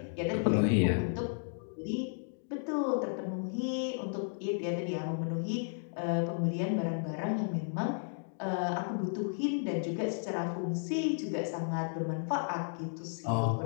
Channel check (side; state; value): right; silent; digital silence